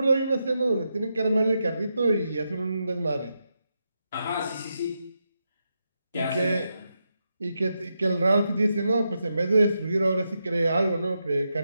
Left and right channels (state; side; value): inverted; both; correlation -0.85